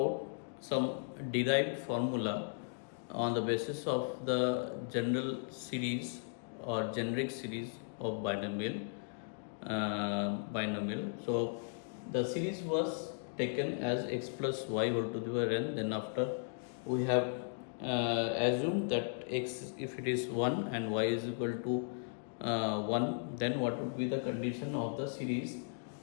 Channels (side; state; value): right; silent; digital silence